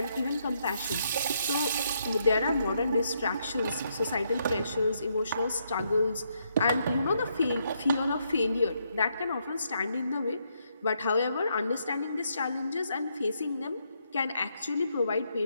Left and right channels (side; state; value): both; inverted; correlation -0.77